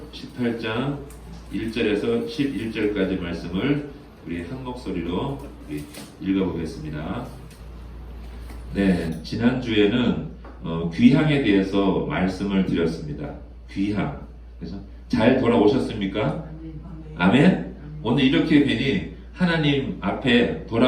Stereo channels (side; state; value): both; identical; correlation 1.00